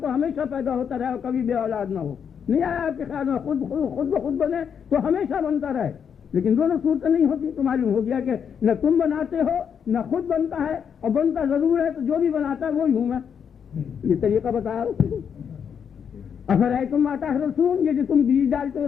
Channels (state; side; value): quieter; right; 7.5 dB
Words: تو ہمیشہ پیدا ہوتا رہے اور کبھی بے اولاد نہ ہو. نہیں آیا آپ کے خیال میں خود بخود بنے تو ہمیشہ بنتا رہے, لیکن دونوں صورتیں نہیں ہوتی. تو معلوم ہو گیا کہ نہ تم بناتے ہو نہ خود بنتا ہے, اور بنتا ضرور ہے تو جو بھی بناتا ہے وہی ہوں میں. یہ طریقہ بتایا. افرأیتم ما تحرثون, یہ جو تم بیج ڈالتے ہو